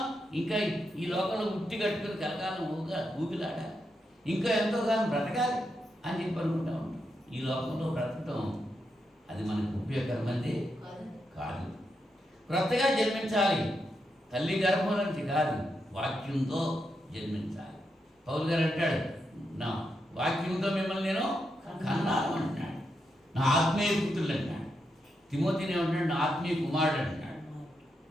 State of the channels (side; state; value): both; normal; correlation 0.84